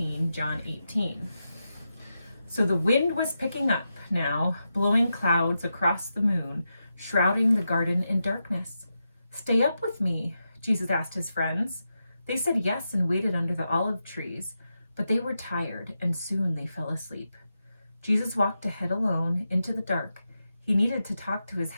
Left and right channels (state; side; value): inverted; both; correlation -0.88